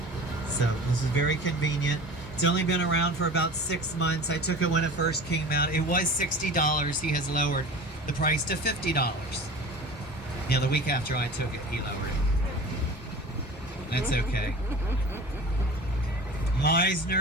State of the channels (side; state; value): both; normal; correlation 0.38